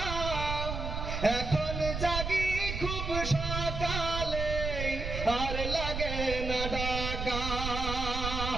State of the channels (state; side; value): noise; right; rumble, 4 dB below the sound